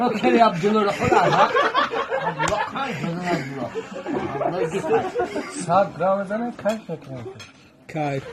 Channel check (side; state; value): both; identical; correlation 1.00